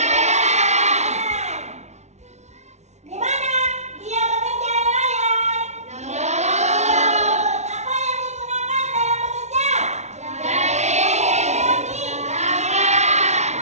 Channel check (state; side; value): late; left; 0.32 ms